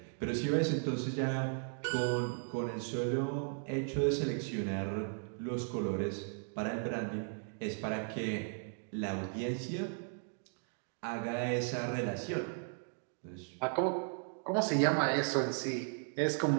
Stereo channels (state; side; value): silent; left; 54 dB below the other